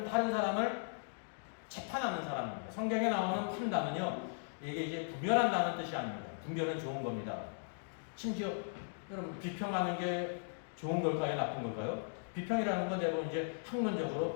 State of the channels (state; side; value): silent; right; digital silence